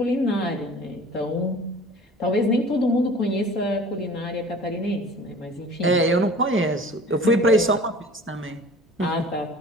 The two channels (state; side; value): normal; both; correlation 0.45